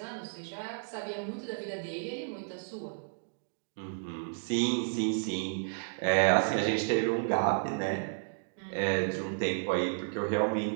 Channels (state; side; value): silent; left; digital silence